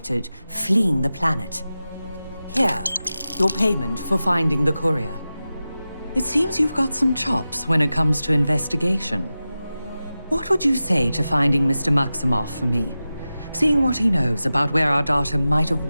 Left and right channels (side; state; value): both; inverted; correlation -0.94